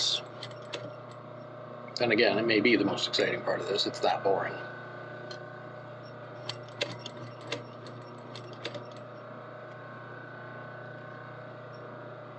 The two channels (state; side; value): identical; both; correlation 1.00